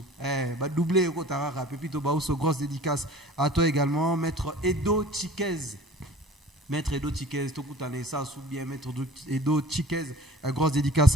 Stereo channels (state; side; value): normal; both; correlation 0.46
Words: ba doublé ko taraka. Pepito Baoso, grosse dédicace à toi également. Maître Edo Chiquez, Tokutane ça sous bien. Maître Edo Chiquez, grosse dédicace